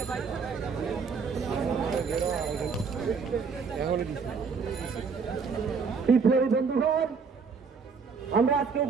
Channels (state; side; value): quieter; left; 5.4 dB